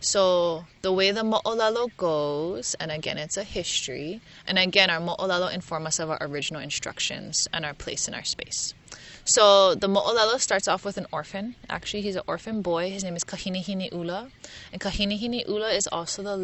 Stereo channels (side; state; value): both; identical; correlation 1.00